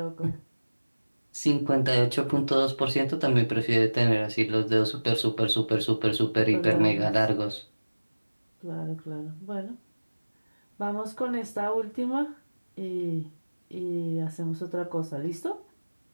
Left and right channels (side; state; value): both; inverted; correlation -1.00